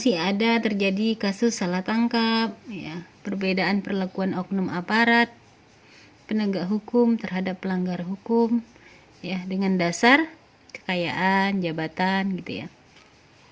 ada terjadi kasus salah tangkap, ya, perbedaan perlakuan oknum aparat penegak hukum terhadap pelanggar hukum, ya, dengan dasar kekayaan, jabatan, gitu ya.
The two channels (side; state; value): both; identical; correlation 1.00